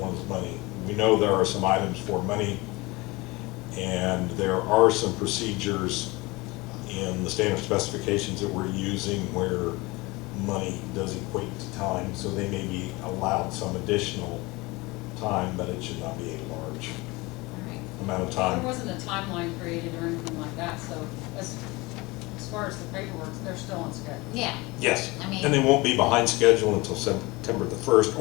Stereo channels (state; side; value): quieter; right; 23.3 dB